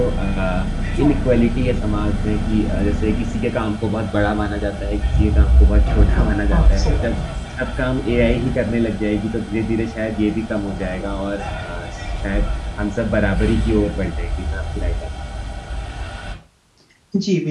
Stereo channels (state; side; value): identical; both; correlation 1.00